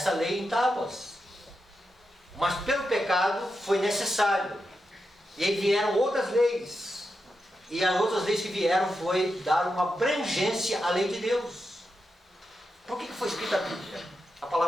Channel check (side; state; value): both; normal; correlation 0.88